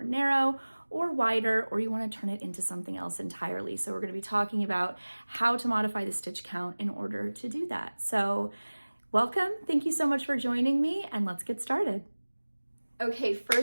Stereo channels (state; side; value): inverted; both; correlation -1.00